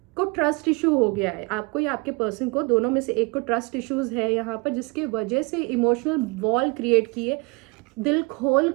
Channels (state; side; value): quieter; left; 28.5 dB